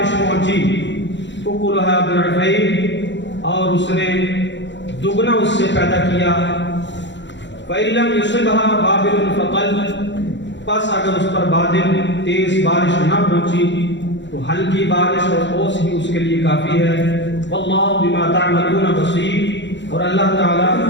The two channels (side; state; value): right; late; 0.53 ms